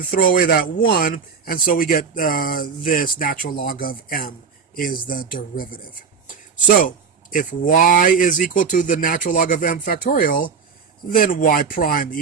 throw away that 1, and so we get this natural log of m is the derivative. So if y is equal to the natural log of m factorial, then y prime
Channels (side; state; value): left; quieter; 5.9 dB